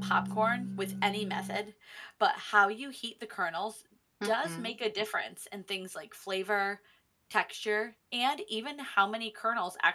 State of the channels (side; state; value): both; identical; correlation 1.00